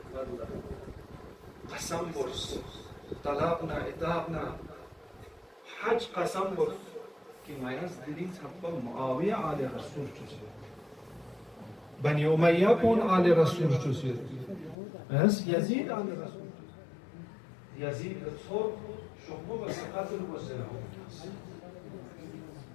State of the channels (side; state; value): right; drops out; at 14.8 s